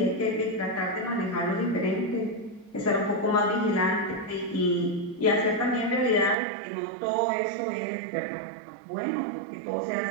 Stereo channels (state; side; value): drops out; left; at 6.4 s